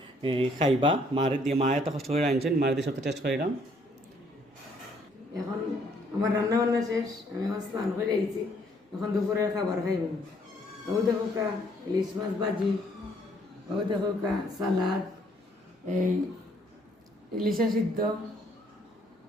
খাইবা, মারে দিয়ে, মা এত কষ্ট করে আনছেন, মারে দিয়ে সবটা টেস্ট করিলাম। এখন আমার রান্না বান্না শেষ, আমি এখন স্নান করে আইছি, এখন দুপুরের খাবার খাইব। ও দেখো কা ইলিশ মাছ ভাজি, ও দেখো কা সালাদ, এই ইলিশা সিদ্ধ,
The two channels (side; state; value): both; normal; correlation 0.66